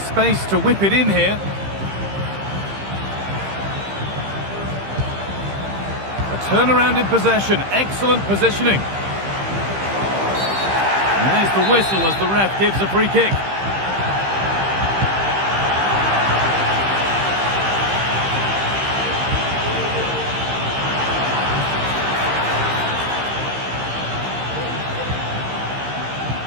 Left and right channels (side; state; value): left; late; 15 ms